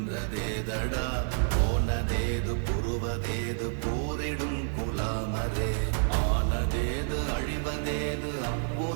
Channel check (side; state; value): left; silent; digital silence